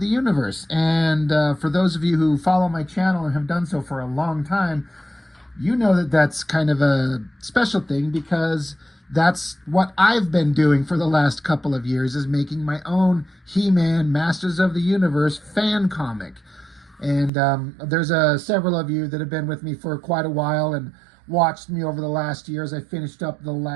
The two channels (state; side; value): drops out; left; at 17.3 s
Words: Universe. And for those of you who follow my channel and have done so for a long time, you know that that's kind of a special thing because that's what I've been doing for the last couple of years, is making my own He-Man Masters of the Universe fan comic. And there's several of you that have been with me for quite a while and watched me over the last years. I finished up the